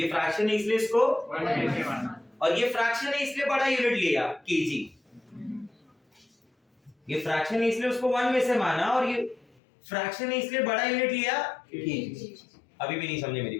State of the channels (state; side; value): drops out; right; at 9.5 s